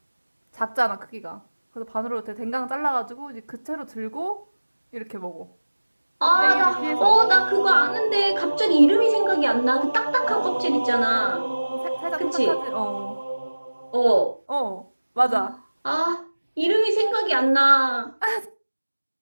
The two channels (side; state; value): both; inverted; correlation -1.00